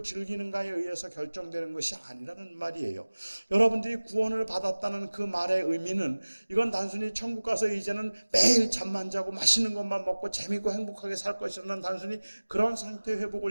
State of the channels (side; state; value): both; inverted; correlation -1.00